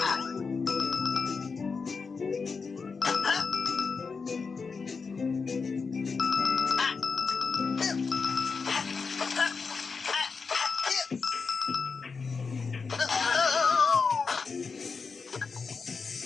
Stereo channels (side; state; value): right; quieter; 5.0 dB